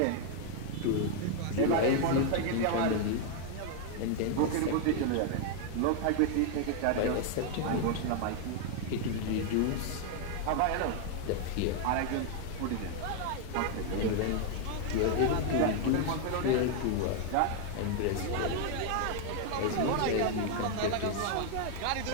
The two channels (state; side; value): different; both; correlation 0.00